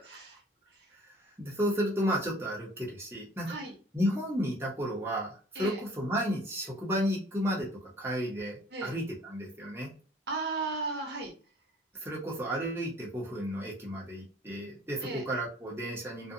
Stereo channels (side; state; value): both; normal; correlation 0.52